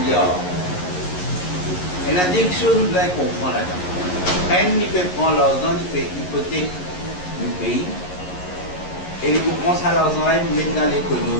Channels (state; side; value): late; right; 11 ms